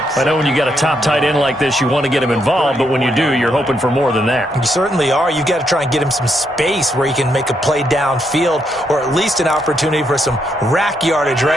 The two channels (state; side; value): normal; both; correlation 0.77